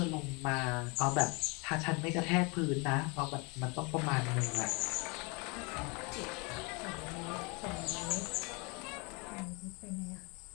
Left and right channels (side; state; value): right; quieter; 30.1 dB